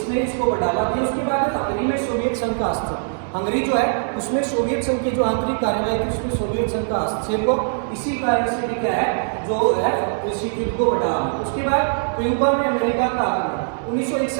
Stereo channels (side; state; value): left; silent; digital silence